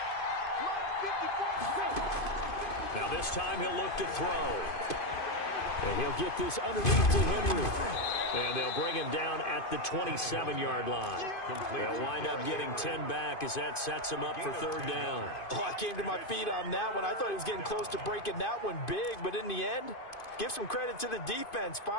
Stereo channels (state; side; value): late; right; 2.5 ms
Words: Now this time he'll look to throw. And he'll get this underneath to Henry. And they'll bring him down at the 27-yard line. They'll wind up getting 10 back as that sets him up for 3rd down. Oh, I came to my feet on that one. I thought he was getting close to breaking that one big, but in the end, give some credit to the defense,